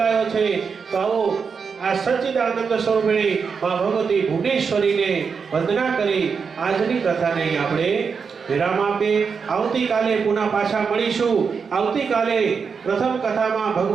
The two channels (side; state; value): left; quieter; 5.7 dB